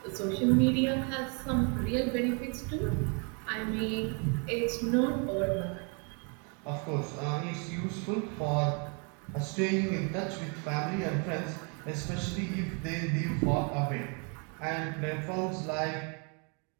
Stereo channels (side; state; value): left; quieter; 36.1 dB